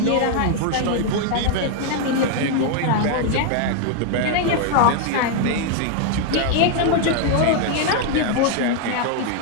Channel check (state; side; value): different; both; correlation 0.00